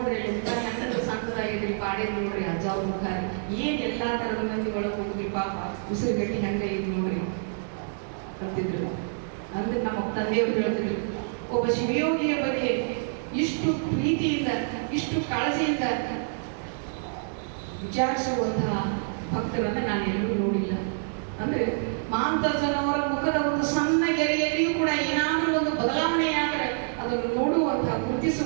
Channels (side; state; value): left; silent; digital silence